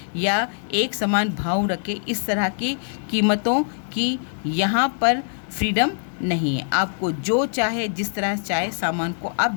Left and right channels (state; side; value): silent; right; 63 dB below the other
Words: या एक समान भाव रखे, इस तरह की कीमतों की यहाँ पर फ्रीडम नहीं है. आपको जो चाहे, जिस तरह चाहे सामान को आप